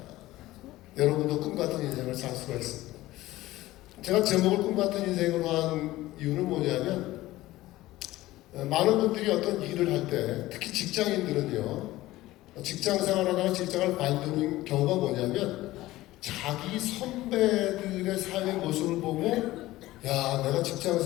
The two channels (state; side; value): quieter; right; 17.1 dB